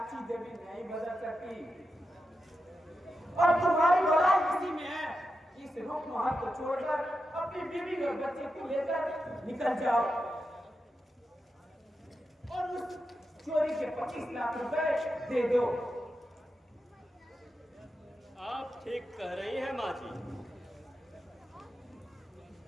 देवी नहीं बदल सकती। और तुम्हारी भलाई इसी में है, इस रूप महल को छोड़कर अपनी बीवी और बच्चे को लेकर निकल जाओ और उस चोरी के 25 लाख रुपए दे दो। आप ठीक कह रही हैं माँ जी।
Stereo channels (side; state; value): both; normal; correlation 0.89